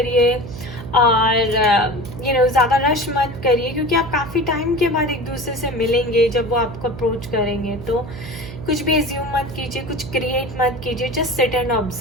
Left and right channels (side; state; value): right; noise; hum, 11 dB below the sound